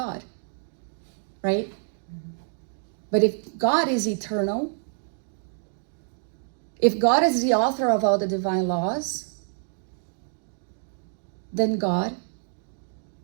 Right? But if God is eternal, if God is the author of all the divine laws, then God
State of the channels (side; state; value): left; silent; digital silence